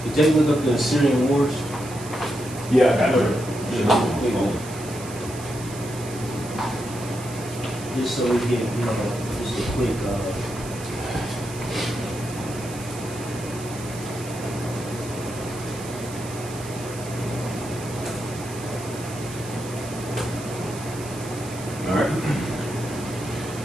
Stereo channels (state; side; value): noise; right; hiss, 14 dB below the sound